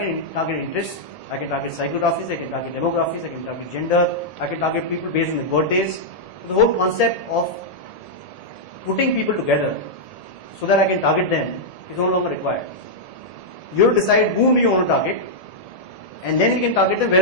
target interests, I can target psychographies, I can target demographies, I can target gender, I can target people based on their birthdays. So the whole concept of putting people together so that I can target them is no longer required. You have to decide whom do you want to target, and then you can target them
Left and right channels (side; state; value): right; late; 1.7 ms